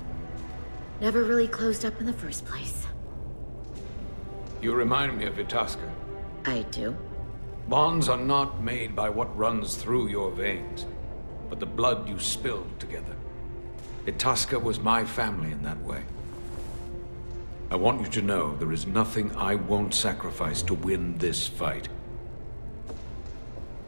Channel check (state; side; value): inverted; both; correlation -1.00